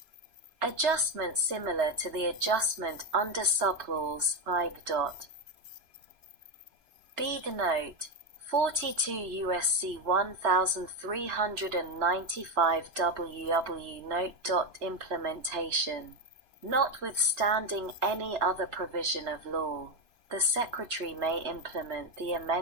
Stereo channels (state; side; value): late; left; 3.0 ms